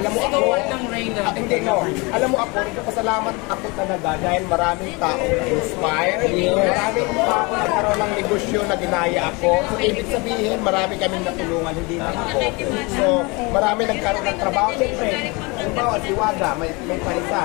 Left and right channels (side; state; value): right; quieter; 27.0 dB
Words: mo ako, hindi no. Alam mo ako, nagpapasalamat ako talaga dahil maraming taong na-inspire. Maraming tao nagkaroon ng negosyo na ginaya ako. So, ibig sabihin, marami kaming natulungan, hindi na ako. So, marami nagkaroon ng trabaho. Siyempre, halimbawa, si Waga, may